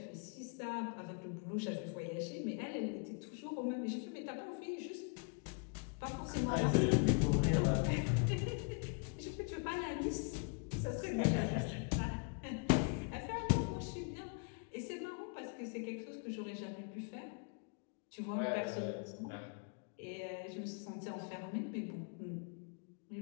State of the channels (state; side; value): quieter; right; 38.7 dB